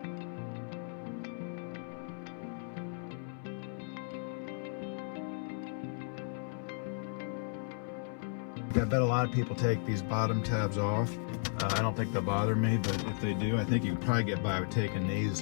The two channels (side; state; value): right; silent; 55 dB below the other